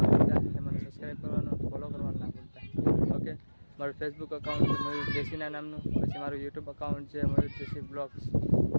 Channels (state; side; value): inverted; both; correlation -1.00